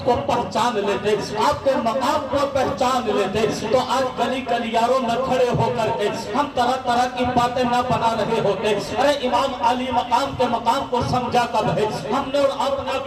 کو پہچان لیتے، آپ کے مقام کو پہچان لیتے، تو آج گلی گلیاروں میں کھڑے ہو کر کے ہم طرح طرح کی باتیں نہ بنا رہے ہوتے۔ ارے امام علی مقام کے مقام کو سمجھا کب ہے، ہم نے اور آپ نے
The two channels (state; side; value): identical; both; correlation 1.00